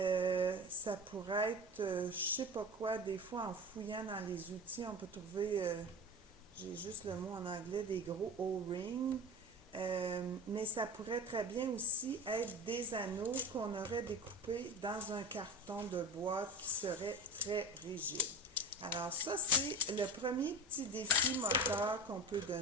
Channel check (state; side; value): normal; both; correlation 0.31